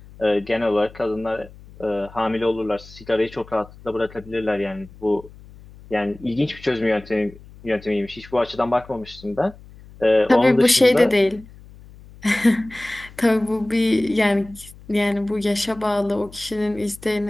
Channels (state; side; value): noise; left; hum, 21 dB below the sound